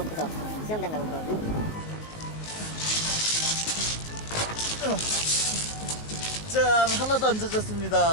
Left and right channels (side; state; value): right; late; 19 ms